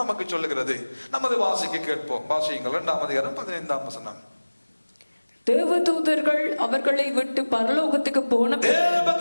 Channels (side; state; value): both; inverted; correlation -1.00